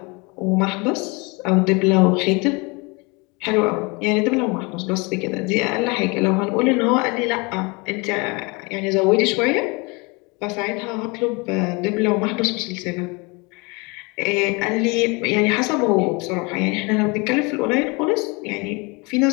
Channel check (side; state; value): right; quieter; 28.1 dB